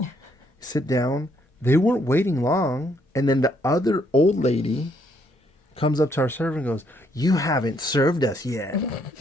sit down. They weren't waiting long, and then the other old lady comes up to our server and goes, "You haven't served us yet."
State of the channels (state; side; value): normal; both; correlation 0.71